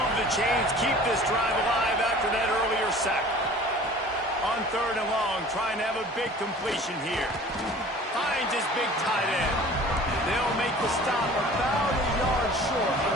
the chains, keep this drive alive after that earlier sack. On 3rd and long, trying to have a big completion here. Finds his big tight end. They'll make the stop about a yard short of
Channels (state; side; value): normal; both; correlation 0.46